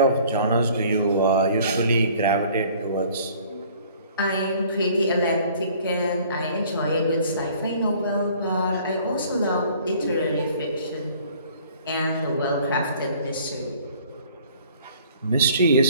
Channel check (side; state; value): both; inverted; correlation -0.54